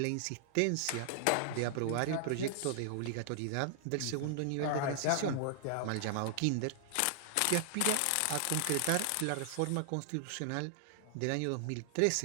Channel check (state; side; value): different; both; correlation 0.00